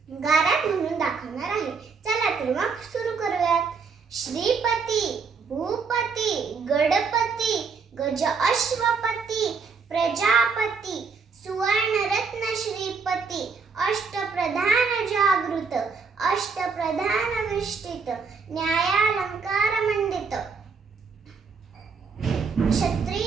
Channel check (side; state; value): left; quieter; 5.2 dB